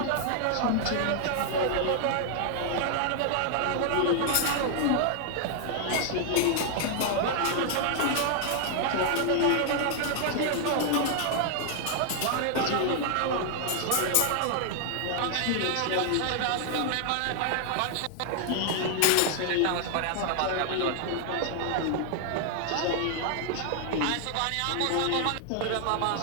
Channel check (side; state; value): both; different; correlation 0.00